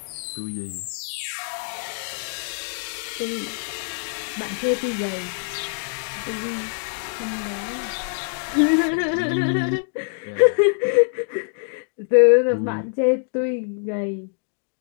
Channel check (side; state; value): right; silent; digital silence